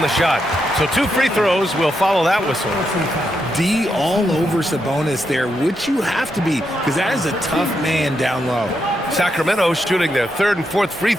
the shot. So 2 free throws will follow that whistle. D all over Sabonis there, which you have to be, because that is a tough man down low. Sacramento shooting their 3rd and 4th free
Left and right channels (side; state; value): both; normal; correlation 0.82